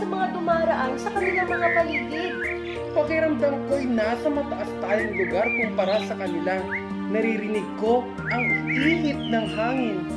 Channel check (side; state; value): both; identical; correlation 1.00